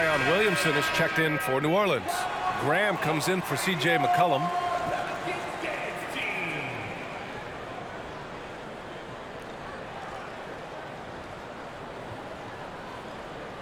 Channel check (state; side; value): identical; both; correlation 1.00